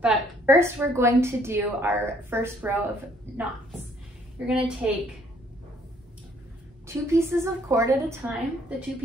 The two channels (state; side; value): normal; both; correlation 0.64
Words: first we're going to do our first row of knots. You're gonna take 2 pieces of cord at a time, the 2